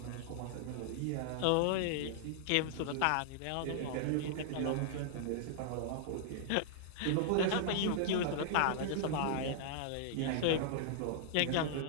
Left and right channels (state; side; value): different; both; correlation -0.01